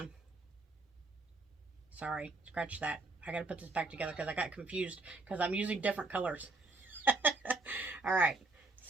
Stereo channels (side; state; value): left; quieter; 3.2 dB